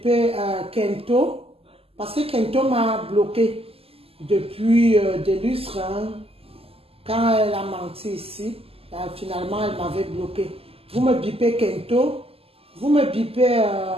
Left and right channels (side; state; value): left; late; 0.28 ms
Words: Kento. Parce que Kento m'a bloqué depuis des lustres. Hein. Quand elle a menti ici, finalement, elle m'avait bloqué. Vous me bipez Kento. Vous me bipez